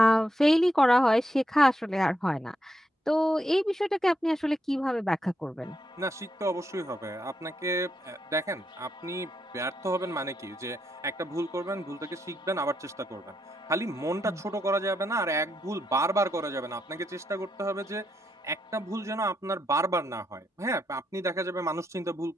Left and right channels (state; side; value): normal; both; correlation 0.80